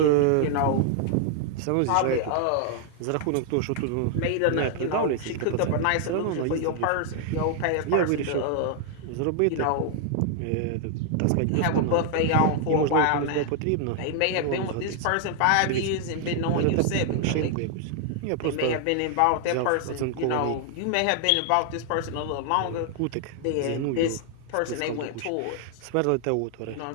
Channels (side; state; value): both; different; correlation 0.00